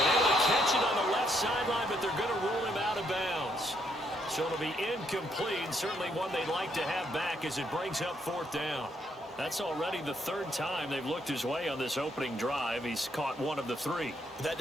able to catch it on the left sideline, but they're going to rule him out of bounds. So it'll be incomplete, certainly one they'd like to have back as it brings up 4th down. That's already the 3rd time they've looked his way on this opening drive. He's caught 1 of the 3. But that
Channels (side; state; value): both; normal; correlation 0.73